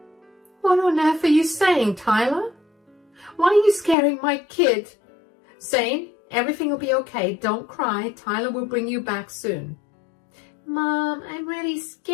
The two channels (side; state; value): right; drops out; at 4.0 s